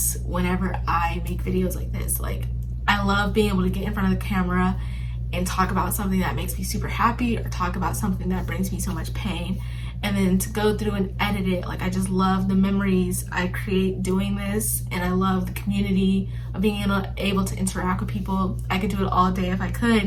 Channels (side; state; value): both; identical; correlation 1.00